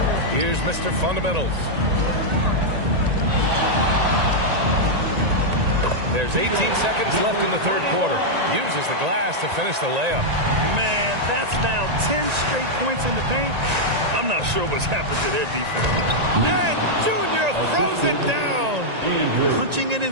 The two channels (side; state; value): left; late; 1.9 ms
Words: Here's Mr. Fundamentals. There's 18 seconds left in the third quarter. Uses the glass to finish the layup. Man, that's now 10 straight points in the paint. I'm not sure what's happened to their defense. And Junior throws it down. Punching it